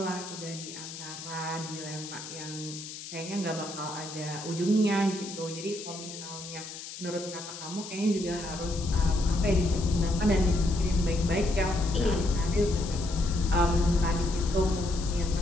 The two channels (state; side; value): noise; left; hiss, 11 dB below the sound